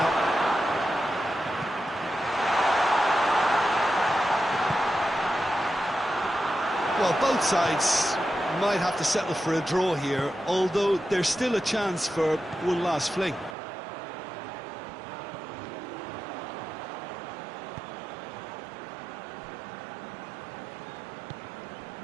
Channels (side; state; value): left; drops out; at 13.6 s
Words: Well, both sides might have to settle for a draw here, although there's still a chance for one last fling.